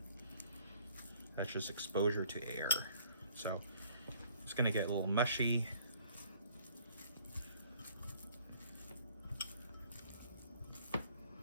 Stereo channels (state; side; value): inverted; both; correlation -0.59